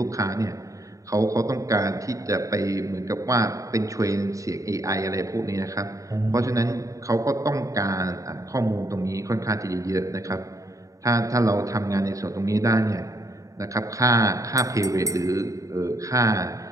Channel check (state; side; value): late; left; 0.16 ms